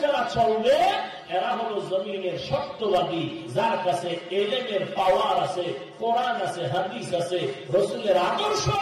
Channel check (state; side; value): identical; both; correlation 1.00